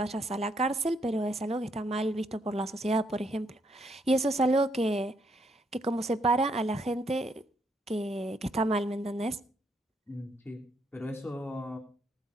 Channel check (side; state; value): both; normal; correlation 0.74